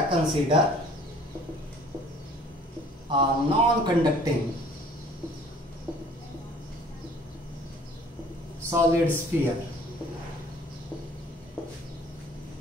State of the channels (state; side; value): normal; both; correlation 0.52